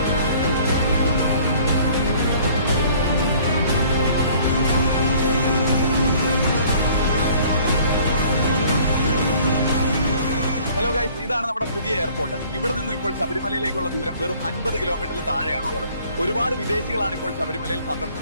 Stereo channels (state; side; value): inverted; both; correlation -0.54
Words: Hello guys, ഇതാണ് നമ്മുടെ പുതിയ എയർപോർട്ട്. ഇവിടെ നിന്ന് ഇപ്പോൾ ശബരിമലയിലേക്കുള്ള ദൂരം വെറും 50 കിലോമീറ്ററിൽ താഴെയാണുള്ളത്. ഒരുപാട് വിദേശികളാണ് ഇപ്പോൾ ശബരിമലയിൽ